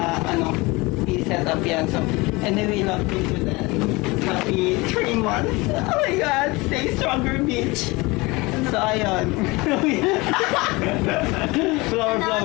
i-set up yan. So anyway, love you to that. Happy 3 months. Oh my God, stay stronger, bitch. So ayun.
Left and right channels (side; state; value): right; quieter; 23.6 dB